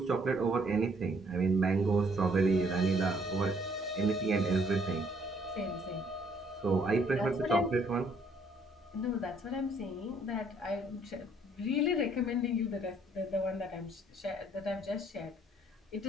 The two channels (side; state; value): both; normal; correlation 0.64